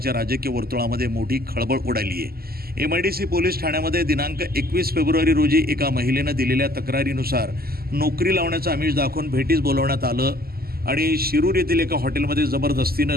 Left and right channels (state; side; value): late; left; 0.45 ms